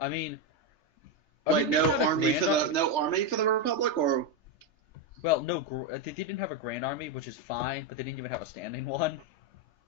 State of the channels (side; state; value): right; late; 3.3 ms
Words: mean... Like, no army for the Republic, or... Well, no, they didn't have a grand army, which is fine, but they didn't even have a standing one.